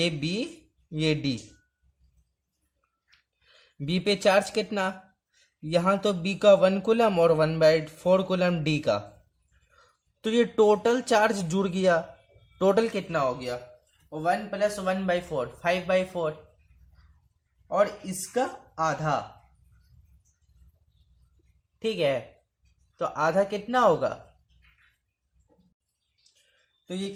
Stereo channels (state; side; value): identical; both; correlation 1.00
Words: बी ये डी। बी पे चार्ज कितना, यहां तो बी का 1 कूलम और 1/4 कूलम डी का, तो ये टोटल चार्ज जुड़ गया। टोटल कितना हो गया, 1 + 1/4 5/4 और इसका आधा, ठीक है। तो आधा कितना होगा, तो ये